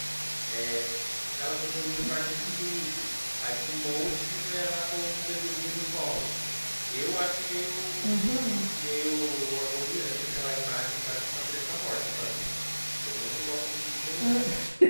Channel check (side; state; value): both; inverted; correlation -1.00